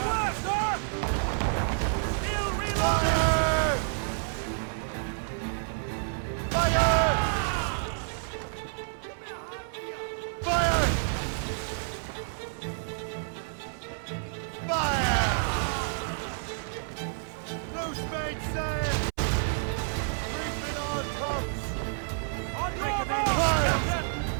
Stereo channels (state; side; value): silent; left; 58 dB below the other